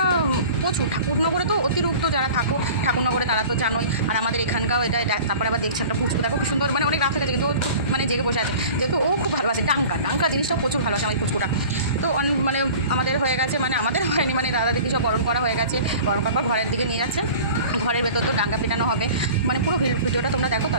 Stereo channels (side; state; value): both; inverted; correlation -0.42